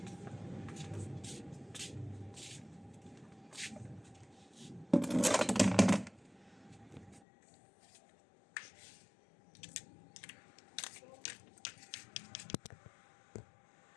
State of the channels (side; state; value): right; drops out; at 7.2 s